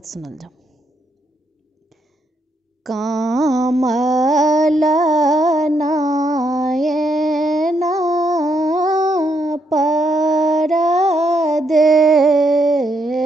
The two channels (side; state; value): both; normal; correlation 0.77